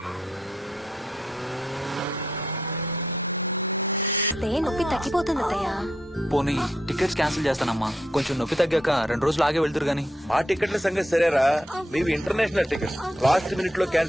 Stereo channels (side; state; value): both; normal; correlation 0.79